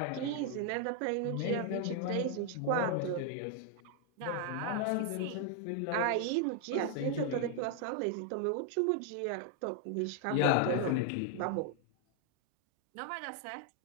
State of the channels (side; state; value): both; different; correlation 0.00